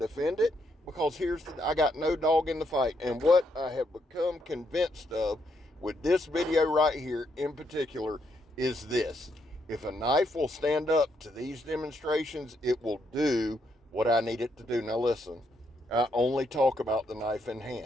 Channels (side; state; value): both; normal; correlation 0.76